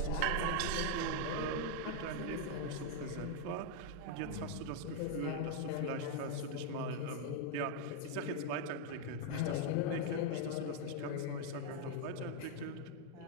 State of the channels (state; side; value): different; both; correlation 0.00